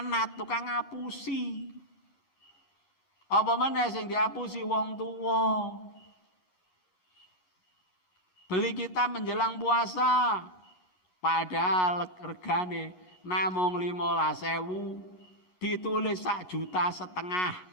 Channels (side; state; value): right; late; 11 ms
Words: tukang ngapusi. Apa meneh sing diapusi wong tuwa. Beli kita menjelang puasa, padahal regane namung 15.000, ditulis 1,5 juta.